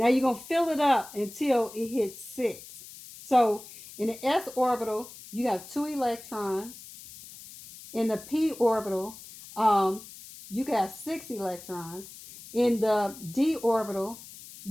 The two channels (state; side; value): noise; left; hiss, 16 dB below the sound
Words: you're going to fill it up until it hits 6. So in the s orbital, you got 2 electrons. In the p orbital, you got 6 electrons. In the d orbital,